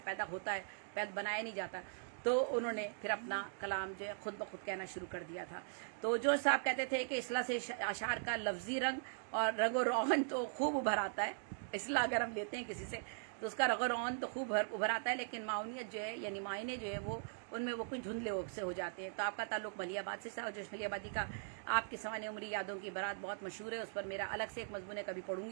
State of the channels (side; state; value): left; silent; digital silence